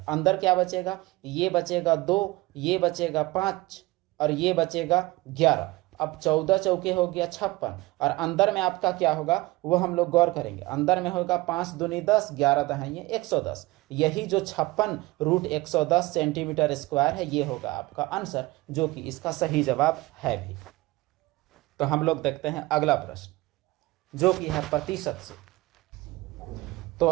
अंदर क्या बचेगा, ये बचेगा 2, ये बचेगा 5 और ये बचेगा 11। अब 14 चौके हो गया 56, और अंदर में आपका क्या होगा वो हम लोग गौर करेंगे। अंदर में होगा 5 दूनी 10, 11 दहाइए 110। यही जो 56 रूट 110 सेंटीमीटर स्क्वायर है, ये होगा आपका आंसर, जो कि इसका सही जवाब है भी। तो हम लोग देखते हैं अगला प्रश्न, जो कि है प्रतिशत से। तो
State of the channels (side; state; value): left; quieter; 20.6 dB